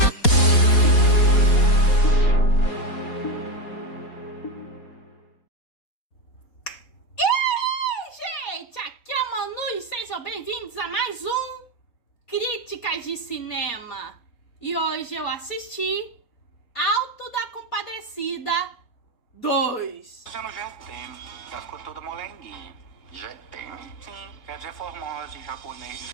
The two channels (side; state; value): right; late; 4.2 ms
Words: Gente, aqui é a Manu e sejam bem-vindos a mais um Críticas de Cinema. E hoje eu assisti Alto da Compadecida 2. Dizendo já tem, já ficou toda molenguinha. Já tem? Sim, quer dizer formosa em japonês.